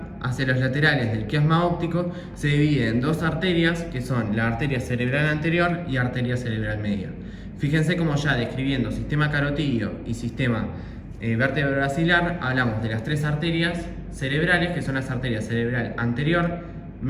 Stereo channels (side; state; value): both; identical; correlation 1.00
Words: hacia los laterales del quiasma óptico, se divide en dos arterias, que son la arteria cerebral anterior y arteria cerebral media. Fíjense cómo ya describiendo sistema carotídeo y sistema vértebro-basilar, hablamos de las tres arterias cerebrales, que son las arterias cerebral anterior,